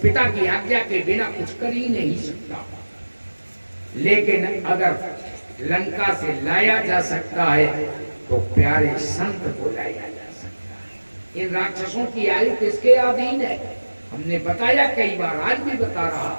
की आज्ञा के बिना कुछ कर ही नहीं सकता। लेकिन अगर लंका से लाया जा सकता है तो प्यारे संत को लाया जा सकता है। इन राक्षसों की आयु किसके अधीन है? हमने बताया कई बार, आज भी बता रहा।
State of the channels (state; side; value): inverted; both; correlation -1.00